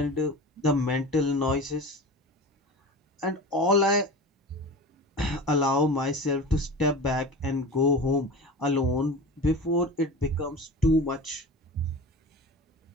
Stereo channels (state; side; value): normal; both; correlation 0.33